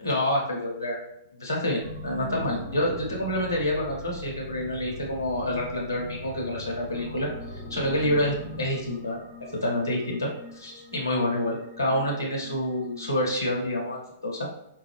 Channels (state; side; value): inverted; both; correlation -0.52